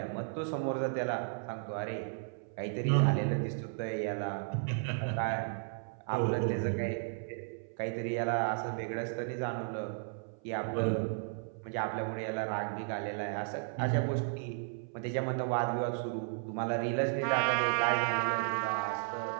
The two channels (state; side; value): silent; left; 55 dB below the other